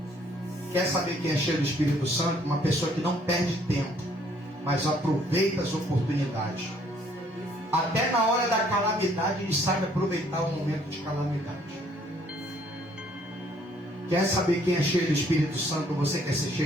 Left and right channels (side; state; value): both; normal; correlation 0.63